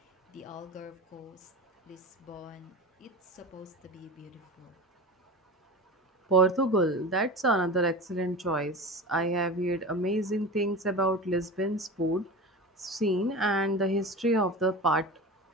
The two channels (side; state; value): both; normal; correlation 0.31